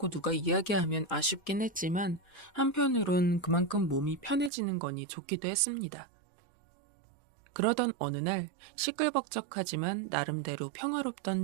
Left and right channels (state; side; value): drops out; left; at 4.5 s